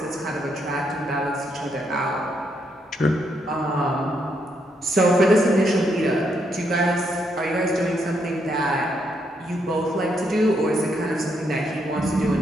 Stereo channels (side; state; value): both; normal; correlation 0.77